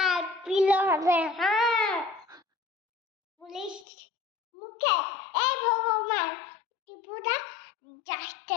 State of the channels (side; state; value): right; drops out; at 3.9 s